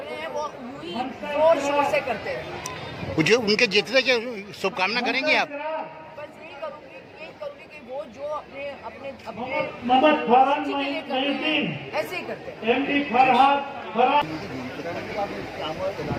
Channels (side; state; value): both; identical; correlation 1.00